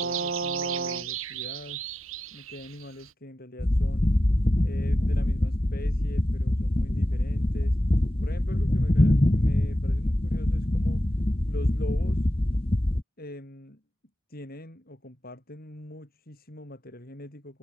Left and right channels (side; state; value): both; normal; correlation 0.91